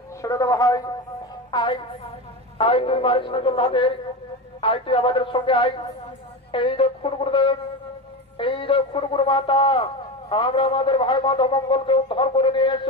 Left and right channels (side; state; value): both; normal; correlation 0.22